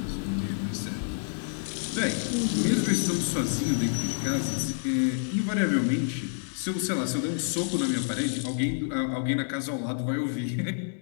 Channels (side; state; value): right; silent; digital silence